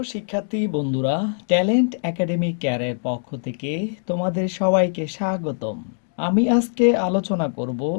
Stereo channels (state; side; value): silent; right; digital silence